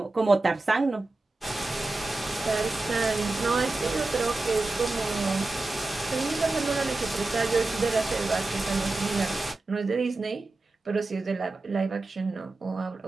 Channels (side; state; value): left; quieter; 3.2 dB